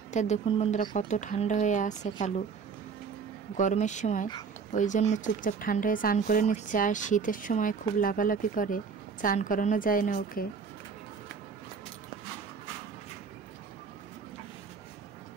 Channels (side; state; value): left; quieter; 5.8 dB